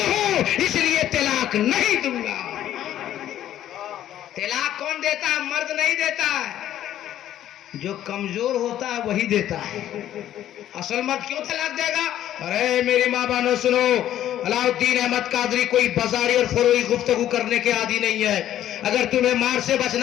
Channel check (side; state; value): right; quieter; 11.9 dB